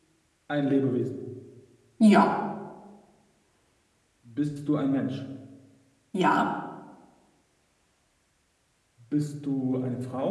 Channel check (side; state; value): both; identical; correlation 1.00